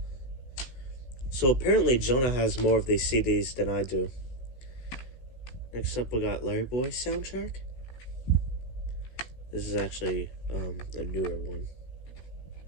So apparently Jonah has more of these CDs than I do. Next up, we got Larry Boy soundtrack. This is actually a newer one.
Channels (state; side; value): late; right; 16 ms